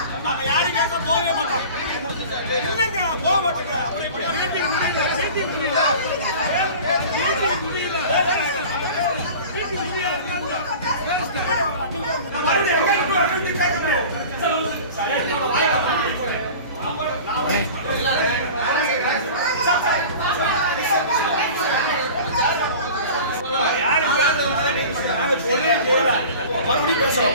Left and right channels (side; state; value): both; inverted; correlation -0.38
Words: நாங்க யாரும் கேட்க போகவே மாட்டோம். இல்லைங்க போக மாட்டேங்க. அப்புறம் இப்படி மீட்டிங் முடியல மறுபடியும் பேச